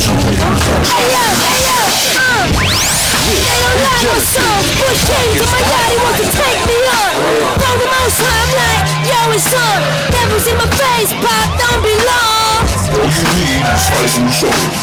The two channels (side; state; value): both; identical; correlation 1.00